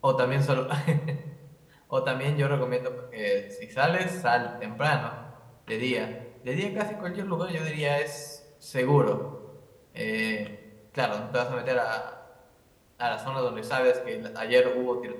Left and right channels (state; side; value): identical; both; correlation 1.00